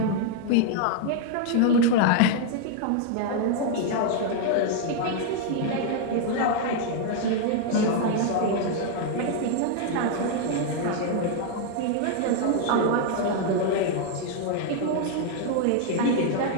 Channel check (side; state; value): both; different; correlation 0.00